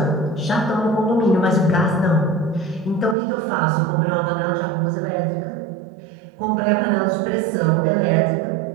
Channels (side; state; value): left; drops out; at 3.2 s